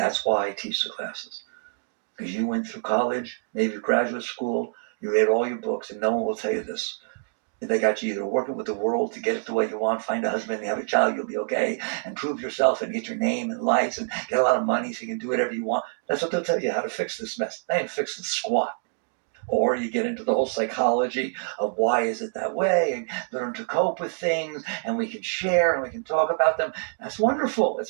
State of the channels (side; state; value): left; silent; digital silence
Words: why I teach the classes. Because you went through college, maybe graduate school, you read all your books, and no one will tell you this. They got you either working with the world to get it the way you want, find a husband, have a child, you'll be okay, and prove yourself and get your name and lights and get a lot of money so you can do whatever you want. That's what they'll tell you, how to fix this mess. They ain't fixing squat. Or you get into the whole psychology of why is it that way and learn to cope with things and we can share and we can talk about them. That's wonderful. It's